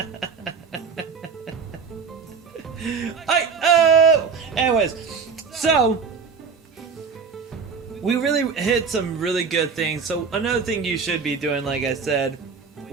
Anyways, so we really hit some really good things. So another thing you should be doing, like I said,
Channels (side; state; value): left; quieter; 5.6 dB